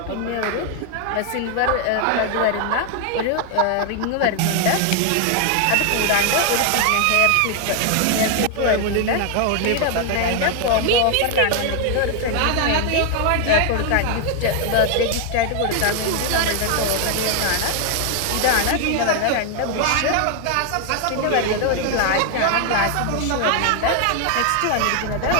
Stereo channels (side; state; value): both; different; correlation 0.00